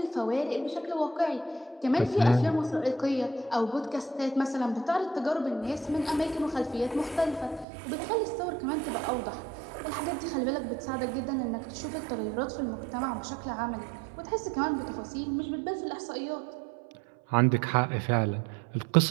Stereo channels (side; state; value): left; drops out; at 7.7 s